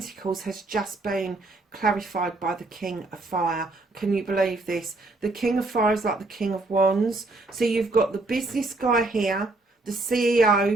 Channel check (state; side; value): quieter; left; 3.1 dB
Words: has just been clarified by the King of Fire. Can you believe this? The King of Fire is like the King of Wands. So you've got the business guy here, the